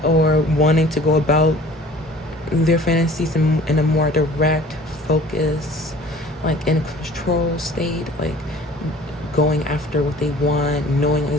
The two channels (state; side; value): normal; both; correlation 0.49